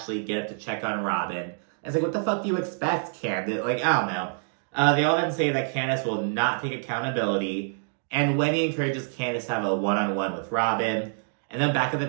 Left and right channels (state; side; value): silent; left; digital silence